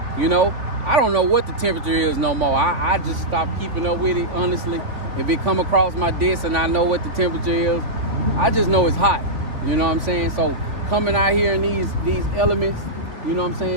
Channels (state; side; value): late; left; 3.7 ms